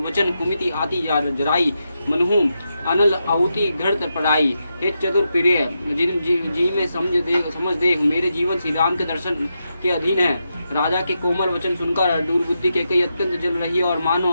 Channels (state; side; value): inverted; both; correlation -0.86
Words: वचन कुमिति आती जराई मनहू अनल आहुति घृत पढ़ाई। हे चतुर प्रिय जी में समझ दे मेरे जीवन श्री राम के दर्शन के अधीन है। राजा के कोमल वचन सुनकर दुर्बुद्धि के कई अत्यंत जल रही है और मानो